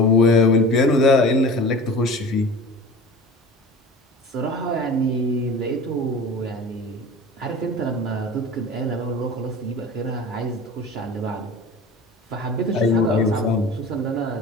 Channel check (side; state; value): both; normal; correlation 0.37